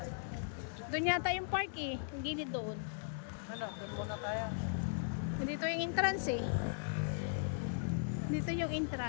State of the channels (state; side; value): silent; right; digital silence